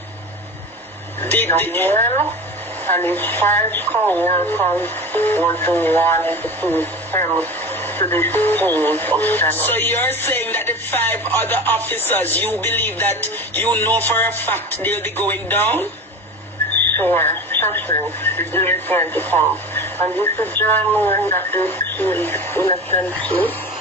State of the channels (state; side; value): normal; both; correlation 0.31